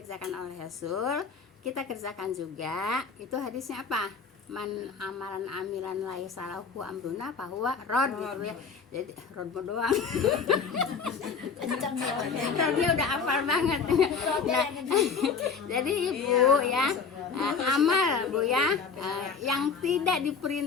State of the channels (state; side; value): quieter; right; 5.5 dB